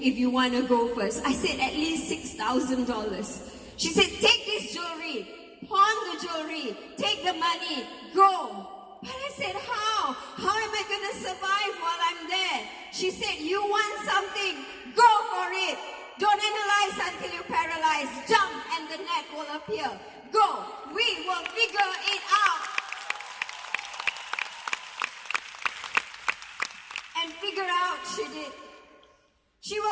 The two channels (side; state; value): both; identical; correlation 1.00